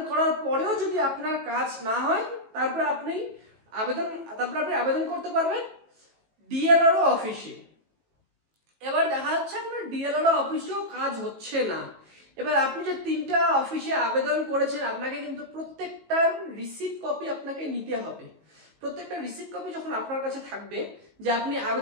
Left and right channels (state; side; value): late; left; 18 ms